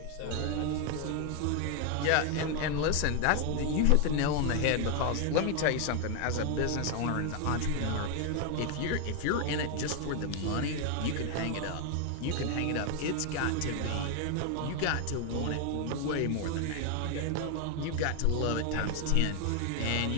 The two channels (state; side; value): different; both; correlation 0.01